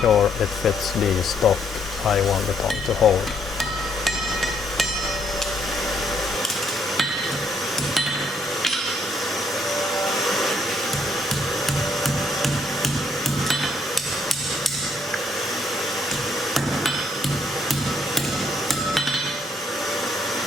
it fits the stock I want the tongue to hold.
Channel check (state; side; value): normal; both; correlation 0.70